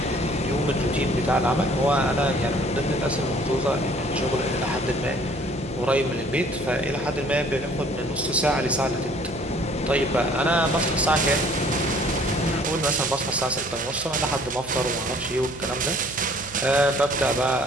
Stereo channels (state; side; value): noise; right; hum, 19 dB below the sound